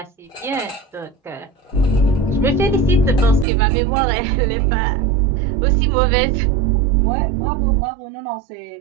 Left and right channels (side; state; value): left; drops out; at 3.5 s